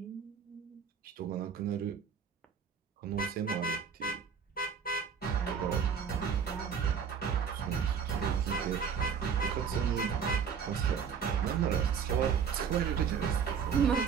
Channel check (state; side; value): quieter; left; 6.9 dB